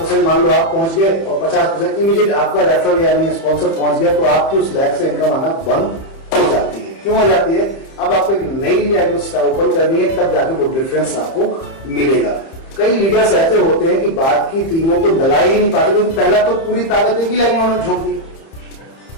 मान लो आप पहुंच गए और 50% इमीडिएट आपका रेफरल यानी स्पॉन्सर पहुंच गया, तो आपकी उस लैब से इनकम आना बंद हो जाती है। क्यों हो जाती है? अब आपको एक नई लैब ओपन करनी है, तब जाके वो डिफरेंस आपको मिलेगा। कई लीडर्स ऐसे होते हैं कि बात की टीमों को लगा ही नहीं पाते, क्योंकि पहला तो पूरी ताकत एक ही लैब में उन्होंने झोंक दी।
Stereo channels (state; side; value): late; right; 30 ms